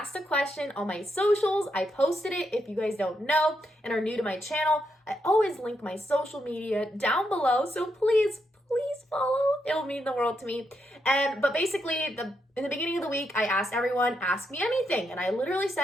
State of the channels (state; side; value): normal; both; correlation 0.81